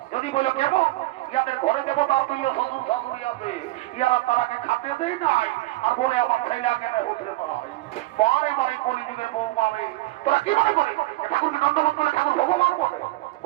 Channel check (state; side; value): quieter; left; 18.9 dB